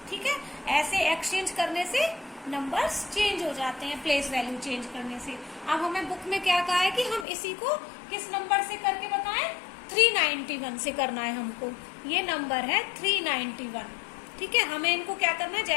ठीक है, ऐसे एक्सचेंज करने से नंबर्स चेंज हो जाते हैं, प्लेस वैल्यू चेंज करने से। अब हमें बुक में क्या कहा है कि हम इसी को किस नंबर से करके बताएं? 391 से करना है हमको। ये नंबर है 391। ठीक है, हमें इनको क्या करना है?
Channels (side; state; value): right; drops out; at 7.2 s